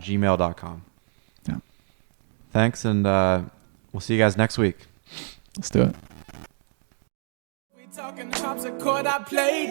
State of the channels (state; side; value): silent; left; digital silence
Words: gmail.com. Yeah. Thanks, and we'll see you guys next week. Let's do it. We talking harpsichord, I